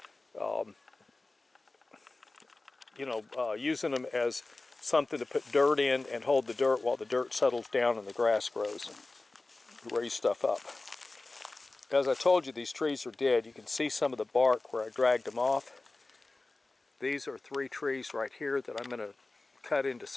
using them as something to put dirt in and hold the dirt while the dirt settles down and the grass grows and raise stuff up. As I told you, these trees are dead. You can see some of the bark where I dragged them off. These are 3 trees right here that I'm going to cut into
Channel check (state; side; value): quieter; right; 3.2 dB